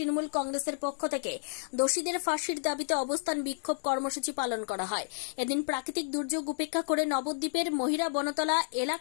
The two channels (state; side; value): silent; right; digital silence